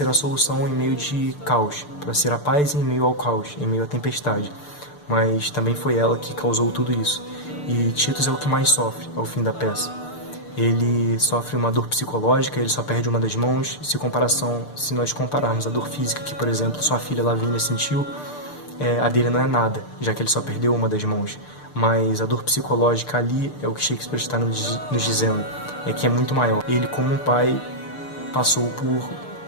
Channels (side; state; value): right; late; 6.7 ms